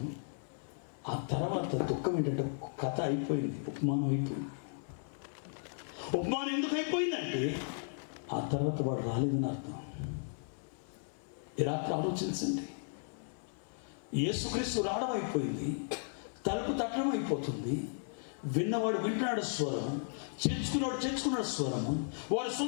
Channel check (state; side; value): silent; right; 54 dB below the other